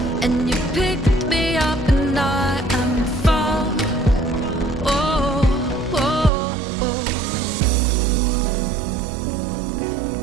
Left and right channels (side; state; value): left; drops out; at 6.3 s